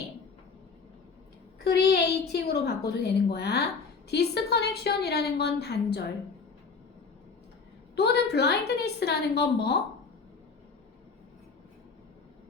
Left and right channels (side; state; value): right; quieter; 4.9 dB